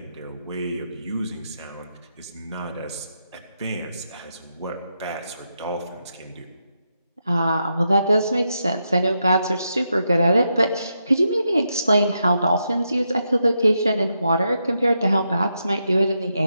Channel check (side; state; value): both; inverted; correlation -0.83